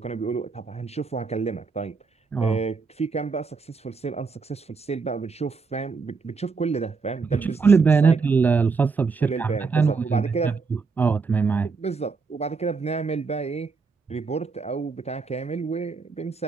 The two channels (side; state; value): left; quieter; 4.7 dB